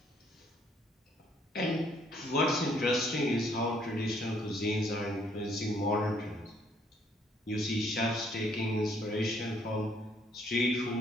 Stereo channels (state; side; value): normal; both; correlation 0.66